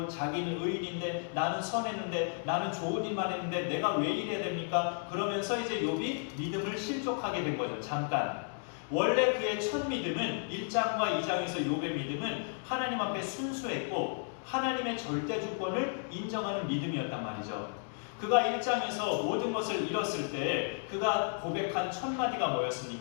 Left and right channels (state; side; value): silent; right; 56 dB below the other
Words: 자기는 의인인데 나는 선했는데 나는 좋은 일만 했는데 내가 왜 이래야 됩니까? 그러면서 이제 욥이 믿음을 실족하게 된 거죠. 잠깐. 원래 그의 첫 믿음은 1장과 2장에서 욥의 믿음은 하나님 앞에 순수했고 하나님의 절대 주권을 인정하는 믿음이었단 말이죠. 그가 1장에서 모든 것을 잃었을 때 그가 고백한 첫 마디가